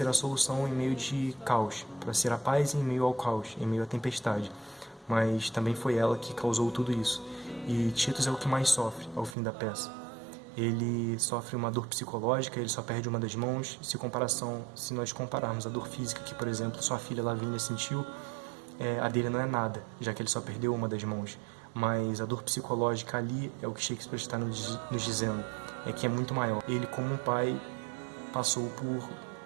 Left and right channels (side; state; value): left; drops out; at 9.3 s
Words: a solução em meio de caos, para ser a paz em meio ao caos, em meio à tempestade. Mas também foi ela que causou tudo isso. E Titus é o que mais sofre ao fim da peça. Ele sofre uma dor psicológica, ele só perde uma das mãos. Se nós compararmos a dor física que, por exemplo, sua filha Lavínia sentiu, a dele não é nada, já que ele só perdeu uma das mãos. Mas a dor psicológica ali é o que Shakespeare está nos dizendo, é que é muito maior. Ele, como um pai, passou por